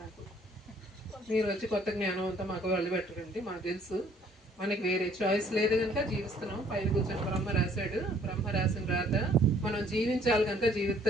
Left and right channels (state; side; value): normal; both; correlation 0.60